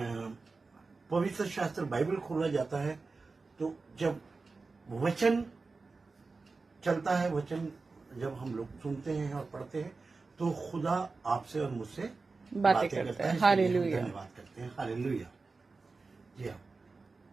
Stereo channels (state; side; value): quieter; left; 4.0 dB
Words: पवित्र शास्त्र बाइबल खोला जाता है, तो जब वचन चलता है, वचन जब हम लोग सुनते हैं और पढ़ते हैं, तो खुदा आपसे और मुझसे बातें करता है। हालेलुया। धन्यवाद करते हैं। हालेलुया। जी हाँ,